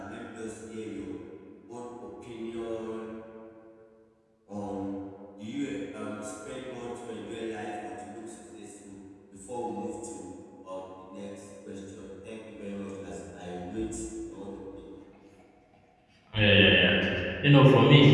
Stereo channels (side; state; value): both; identical; correlation 1.00